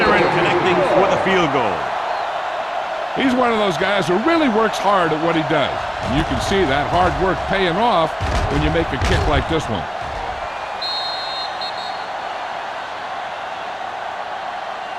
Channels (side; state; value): both; identical; correlation 1.00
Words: connecting for the field goal. He's one of those guys who really works hard at what he does. And you can see that hard work paying off when you make a kick like this one.